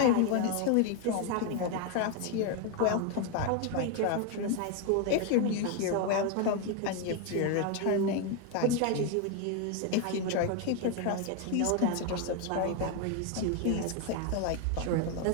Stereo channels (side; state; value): both; different; correlation 0.01